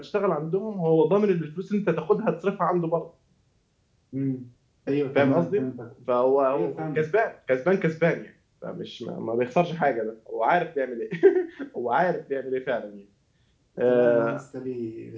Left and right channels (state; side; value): identical; both; correlation 1.00